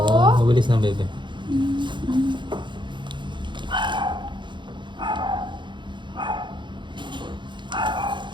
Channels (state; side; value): late; left; 0.23 ms